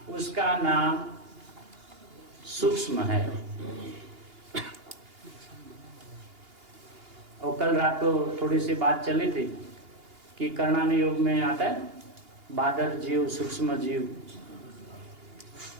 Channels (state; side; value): late; left; 2.8 ms